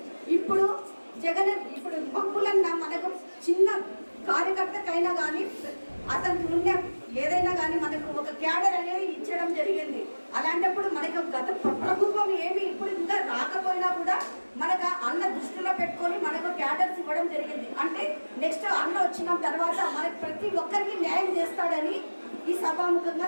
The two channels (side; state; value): both; inverted; correlation -1.00